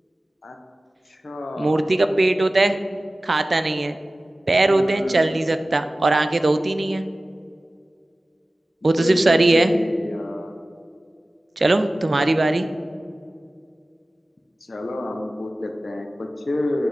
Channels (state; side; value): normal; both; correlation 0.97